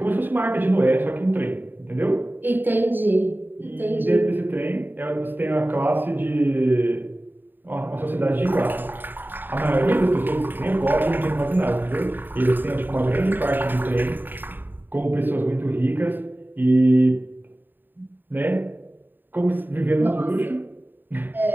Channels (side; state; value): left; late; 0.092 ms